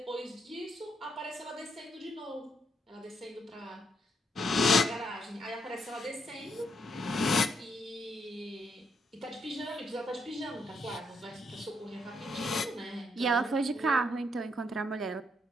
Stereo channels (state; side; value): normal; both; correlation 0.75